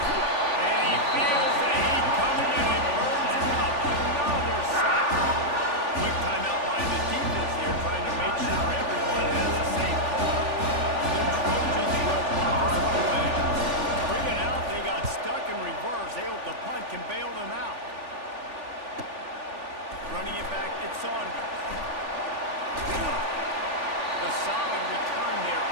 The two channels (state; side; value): late; left; 3.4 ms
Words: And he feels the heat coming, and it burns him up. Another sack. Quick timeout by the defense here, trying to make sure everyone has the same call. The Trojans will punt this one away. 3 and out, they got stuck in reverse. They hope the punt can bail them out. Running it back, it's Saunders. The solid return there